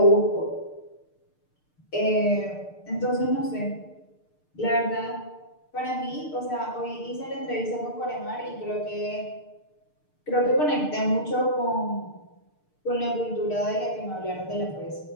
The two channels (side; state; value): right; late; 6.7 ms